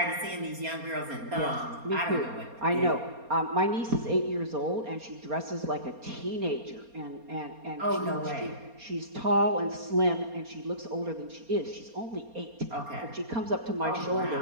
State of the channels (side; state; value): left; late; 4.3 ms